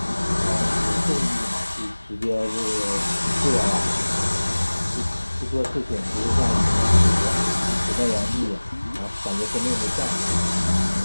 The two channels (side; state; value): both; inverted; correlation -1.00